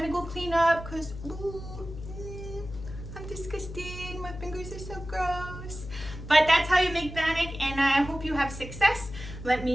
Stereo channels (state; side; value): noise; left; hum, 11 dB below the sound